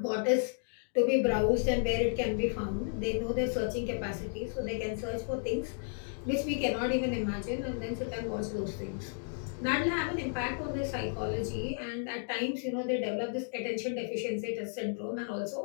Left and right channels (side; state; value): right; silent; digital silence